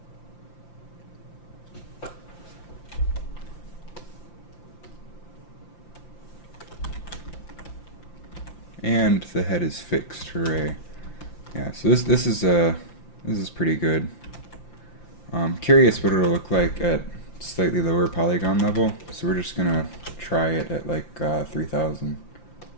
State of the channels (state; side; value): late; right; 5.8 ms